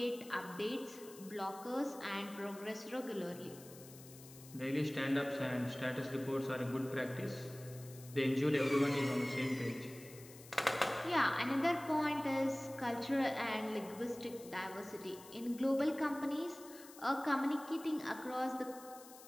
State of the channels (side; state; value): left; noise; hiss, 18 dB below the sound